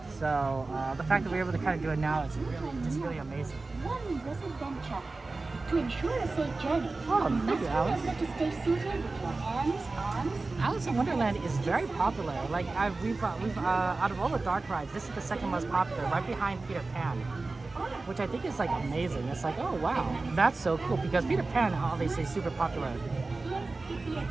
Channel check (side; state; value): left; quieter; 3.5 dB